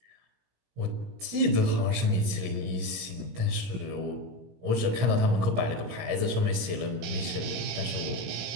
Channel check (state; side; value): late; left; 17 ms